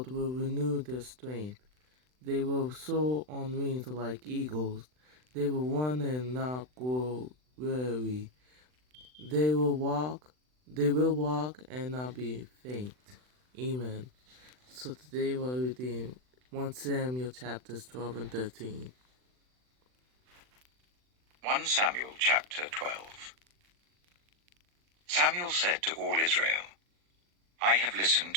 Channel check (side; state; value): left; late; 39 ms